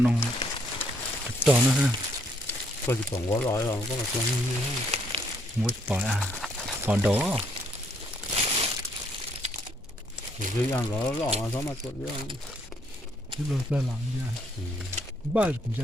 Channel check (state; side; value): normal; both; correlation 0.69